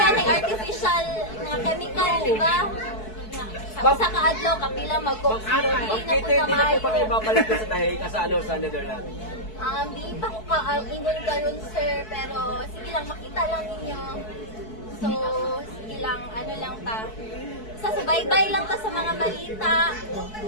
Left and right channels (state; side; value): late; right; 4.6 ms